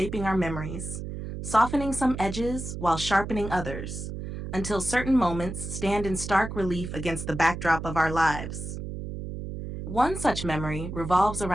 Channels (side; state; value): right; noise; hum, 7 dB below the sound